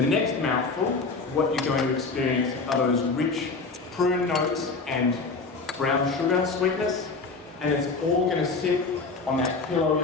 next mouthful, what you're going to experience are those rich prune notes and brown sugar sweetness, and it's all going to sit on that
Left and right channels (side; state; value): right; quieter; 4.1 dB